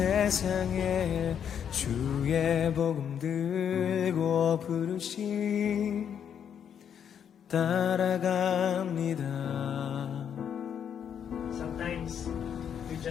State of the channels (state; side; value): quieter; right; 8.4 dB